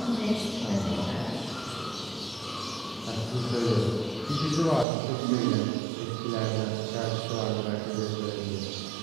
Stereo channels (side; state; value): left; drops out; at 4.9 s